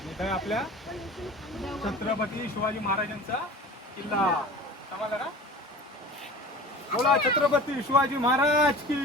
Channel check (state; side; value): normal; both; correlation 0.39